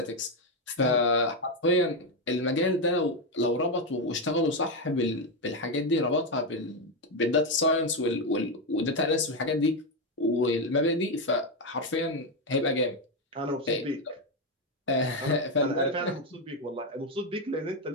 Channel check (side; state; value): both; normal; correlation 0.07